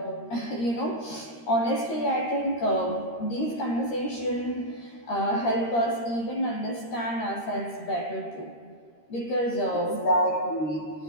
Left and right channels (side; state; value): right; late; 13 ms